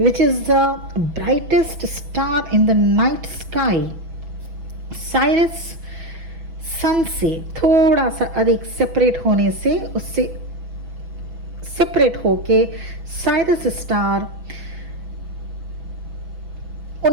is the brightest star in the night sky, Sirius sun से थोड़ा सा अधिक सेपरेट होने से, उससे सेपरेट होके साइरस स्टार,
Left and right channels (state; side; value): late; left; 6.1 ms